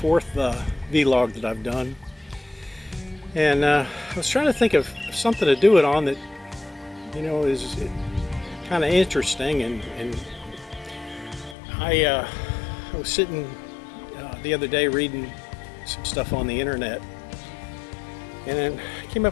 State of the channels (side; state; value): right; drops out; at 11.6 s